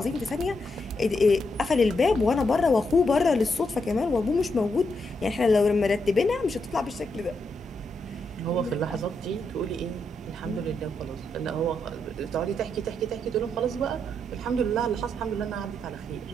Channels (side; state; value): both; normal; correlation 0.81